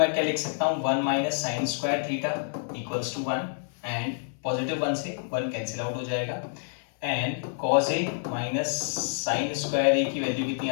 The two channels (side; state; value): right; silent; 59 dB below the other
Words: क्या लिख सकता हूँ 1 minus sine square theta equals to 1 and positive 1 से 1 कैंसिल आउट हो जाएगा and cos A minus sine square A की वैल्यू कितनी